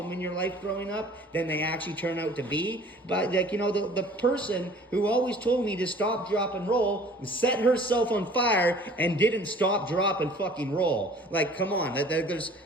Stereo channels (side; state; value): both; normal; correlation 0.50